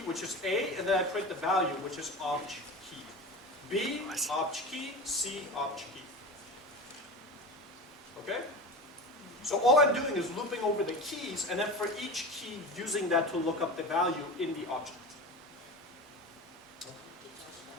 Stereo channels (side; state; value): both; normal; correlation 0.30